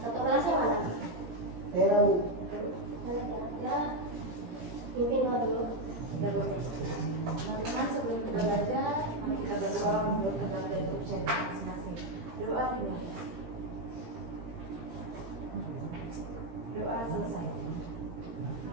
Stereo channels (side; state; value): left; late; 17 ms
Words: Satu kelasnya mana? Tahu. Mana kira-kira? Pimpin dulu. Teman-teman, sebelum kita belajar, mari kita berdoa menurut tentang bentuk channel masing-masing. Doa dimulai. Doa selesai.